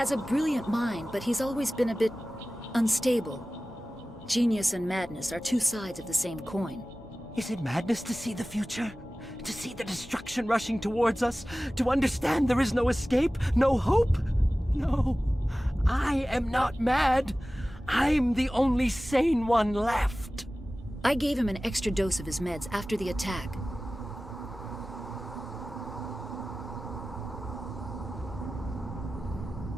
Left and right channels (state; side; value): normal; both; correlation 0.97